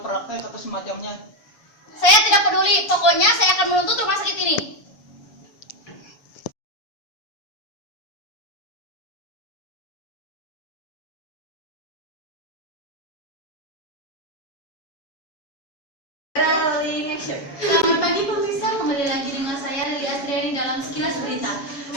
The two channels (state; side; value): late; right; 7.1 ms